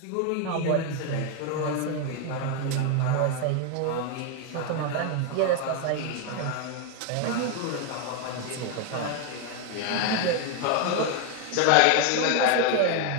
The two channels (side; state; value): both; different; correlation 0.01